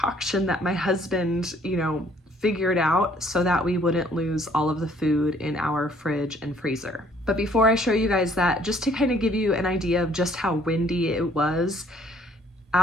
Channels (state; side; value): normal; both; correlation 0.61